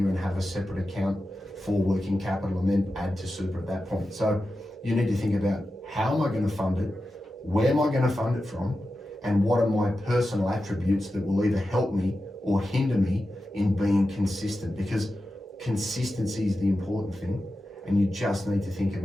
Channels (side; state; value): both; normal; correlation 0.92